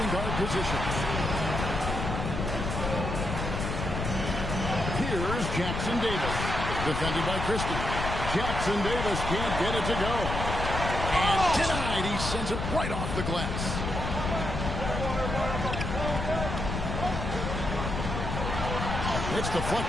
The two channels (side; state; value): left; noise; rumble, 3 dB below the sound